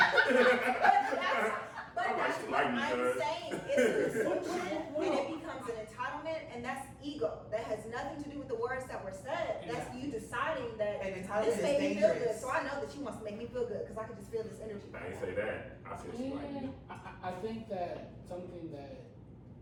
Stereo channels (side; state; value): both; identical; correlation 1.00